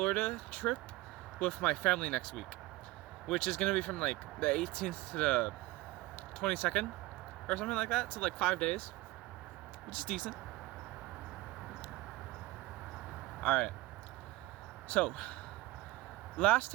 trip with my family next week, which is gonna be from the 18th to the 22nd or something like that, so 5 days, which is decent. Alright, so last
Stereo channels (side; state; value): left; quieter; 19.3 dB